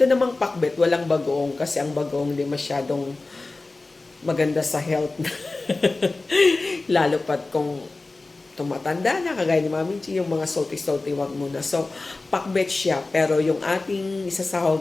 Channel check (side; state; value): right; quieter; 3.3 dB